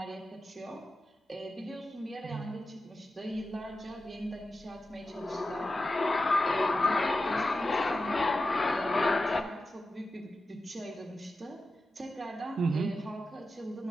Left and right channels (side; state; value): both; normal; correlation 0.91